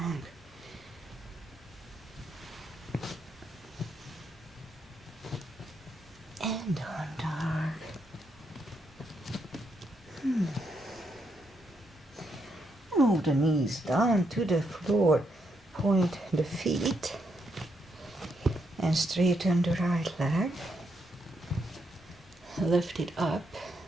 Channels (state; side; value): normal; both; correlation 0.79